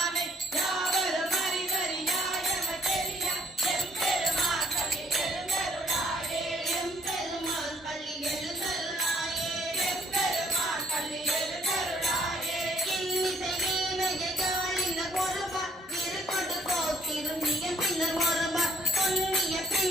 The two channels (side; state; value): both; normal; correlation 0.64